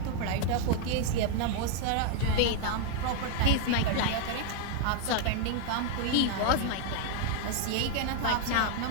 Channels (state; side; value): different; both; correlation 0.00